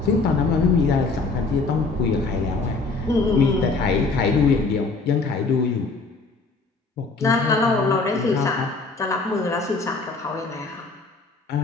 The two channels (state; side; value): quieter; right; 3.8 dB